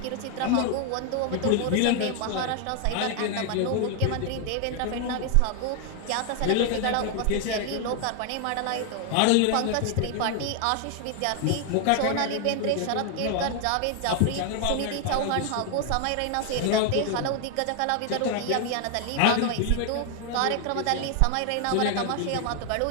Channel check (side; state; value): both; different; correlation 0.00